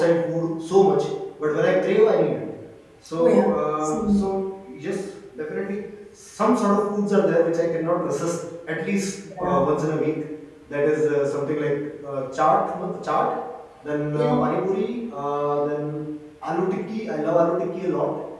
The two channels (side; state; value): both; identical; correlation 1.00